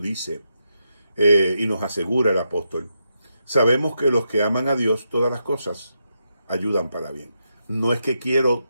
y nos asegura el apóstol, sabemos que los que aman a Dios todas las cosas ayudan para bien. No es que quiero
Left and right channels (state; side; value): inverted; both; correlation -0.83